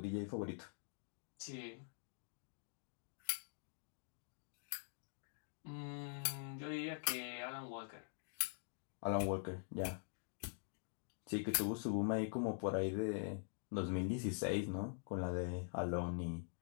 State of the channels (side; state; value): right; silent; digital silence